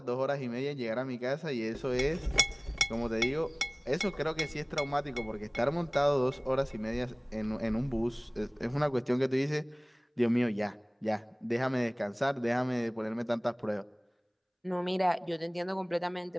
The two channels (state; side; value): identical; both; correlation 1.00